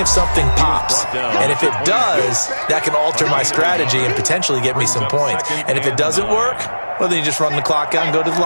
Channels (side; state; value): both; inverted; correlation -1.00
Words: something pops, and if it does, that can alter my strategy and potentially get me some points. And if it doesn't work, well, then you just run the clock out and go to the